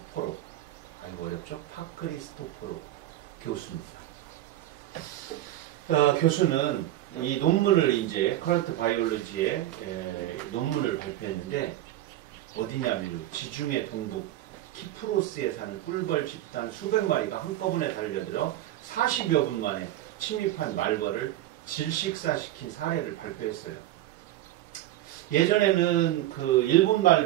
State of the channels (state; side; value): quieter; left; 14.2 dB